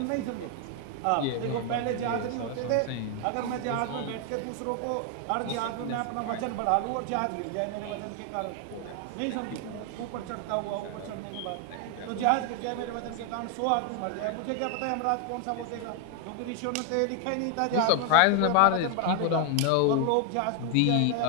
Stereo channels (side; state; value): both; different; correlation 0.00